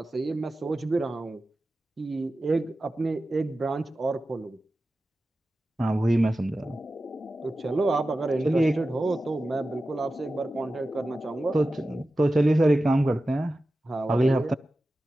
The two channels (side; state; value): both; normal; correlation 0.94